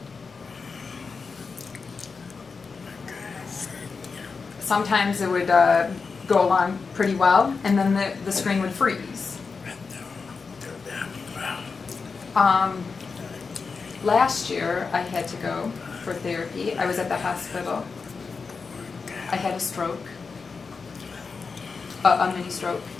Sometimes it would go along pretty well, and then the screen would freeze. Last year, I had to go for therapy. I was at the hospital. I had a stroke, a mini stroke,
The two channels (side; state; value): right; quieter; 4.9 dB